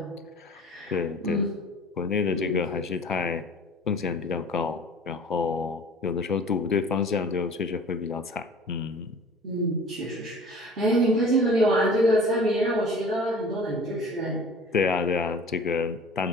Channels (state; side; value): normal; both; correlation 0.44